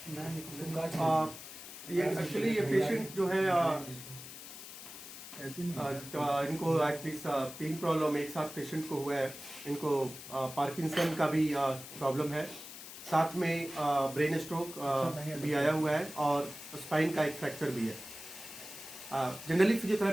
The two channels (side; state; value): left; noise; hiss, 13 dB below the sound